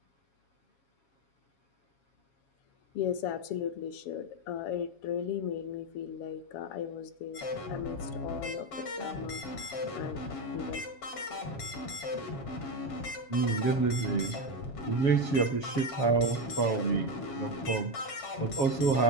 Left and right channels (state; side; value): late; right; 7.3 ms